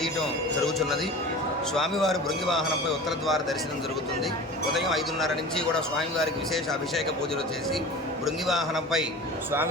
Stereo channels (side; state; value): both; normal; correlation 0.36